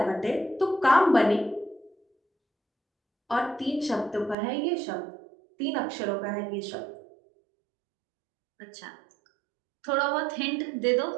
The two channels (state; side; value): drops out; left; at 4.4 s